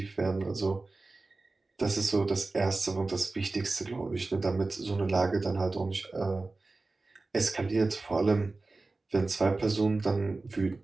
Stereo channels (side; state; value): left; quieter; 3.4 dB